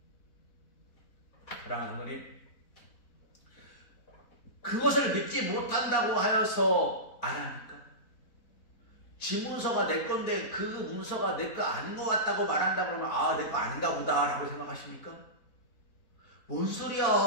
사랑하는 성도님, 그것을 믿지 못한다고 하여서 안 합니까? 지 문서가 내 건데 그 문서가 내 거 아닌 것 같다고 말한다 그러면 아, 내 거 아닌가 보다 라고 생각하십니까? 뭔 소리야?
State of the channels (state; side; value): late; right; 4.1 ms